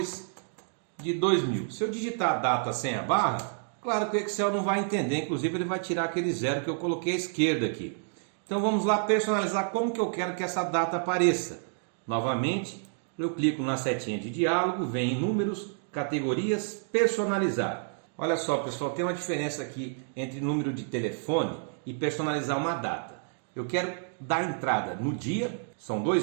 Se eu digitar a data sem a barra, claro que o Excel não vai entender. Inclusive, ele vai tirar aquele zero que eu coloquei à esquerda aqui. Então, vamos lá personalizar como que eu quero que essa data apareça. Novamente, eu clico na setinha de diálogo, vem em números, categorias, personalizar. Olha só, pessoal, tem uma diferença aqui entre número de telefone e personalizar uma data. Eu quero dar entrada no dia, são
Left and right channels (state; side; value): silent; left; digital silence